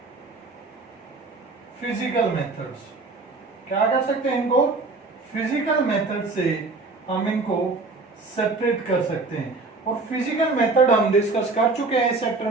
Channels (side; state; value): left; quieter; 3.6 dB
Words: physical methods। क्या कर सकते हैं? इनको फिजिकल मेथड से हम इनको सेपरेट कर सकते हैं। और फिजिकल मेथड हम डिस्कस कर चुके हैं इस चैप्टर